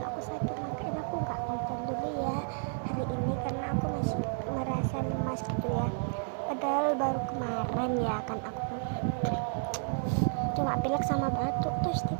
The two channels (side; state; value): left; silent; digital silence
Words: aku sakit, makanya aku nggak konten dulu ya hari ini karena aku masih merasa lemas gitu ya. Padahal baru kemarin ya kan aku cuma pilek sama batuk, terus